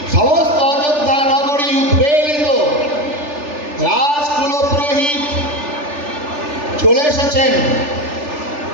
সমস্ত অযোধ্যা নগরী উদ্বেলিত, রাজকুল পুরোহিত চলে এসেছেন,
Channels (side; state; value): left; late; 3.4 ms